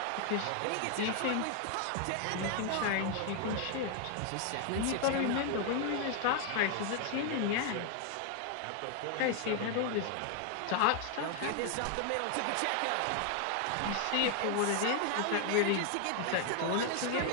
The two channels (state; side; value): different; both; correlation 0.00